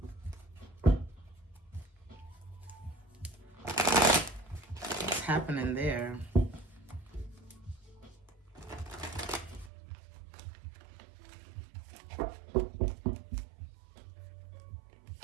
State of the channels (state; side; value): drops out; left; at 9.7 s